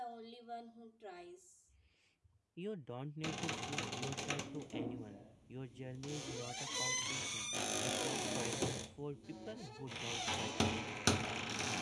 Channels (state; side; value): identical; both; correlation 1.00